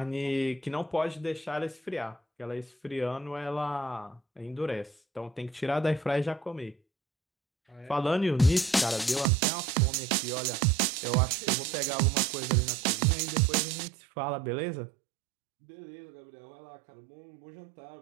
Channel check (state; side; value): drops out; left; at 9.2 s